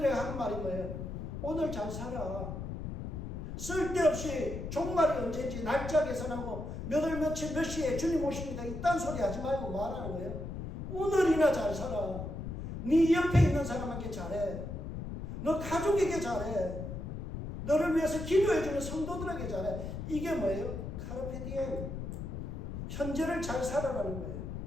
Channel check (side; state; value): left; noise; rumble, 6 dB below the sound